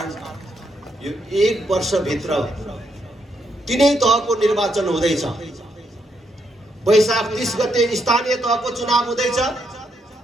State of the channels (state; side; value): normal; both; correlation 0.77